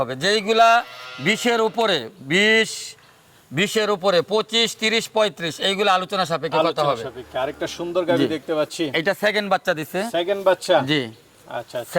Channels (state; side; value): identical; both; correlation 1.00